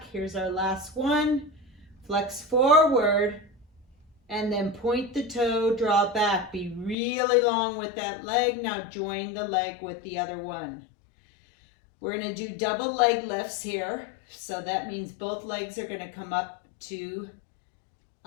Here's our last one. Flex forward and then point the toe, draw back. Be really long with that leg. Now join the leg with the other one. We're going to do double leg lifts here. So that means both legs are going to come up 2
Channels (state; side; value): drops out; right; at 7.0 s